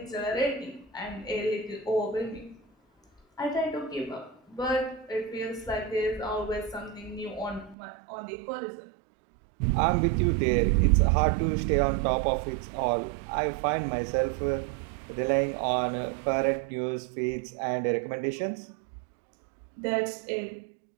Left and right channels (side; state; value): left; drops out; at 7.8 s